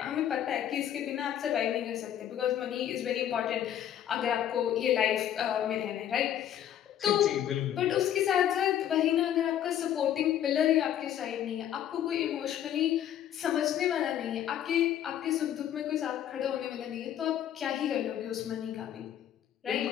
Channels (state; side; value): quieter; right; 10.7 dB